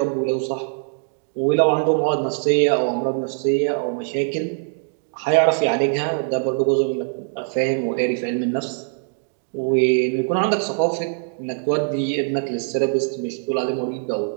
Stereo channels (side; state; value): left; silent; digital silence